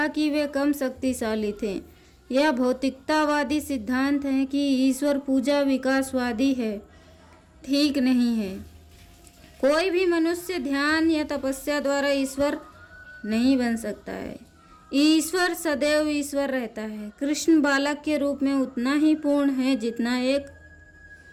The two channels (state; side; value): identical; both; correlation 1.00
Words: कि वे कम शक्तिशाली थे। यह भौतिकतावादी सिद्धांत है कि ईश्वर पूजा विकासवादी है, ठीक नहीं है। कोई भी मनुष्य ध्यान या तपस्या द्वारा ईश्वर नहीं बन सकता है। ईश्वर सदैव ईश्वर रहता है। कृष्ण बालक के रूप में उतना ही पूर्ण है जितना एक